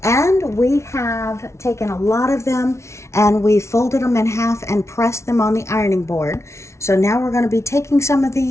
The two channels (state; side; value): late; right; 0.13 ms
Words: And we have taken a lot of them and we folded them in half and pressed them on the ironing board. So now we're going to be taking some of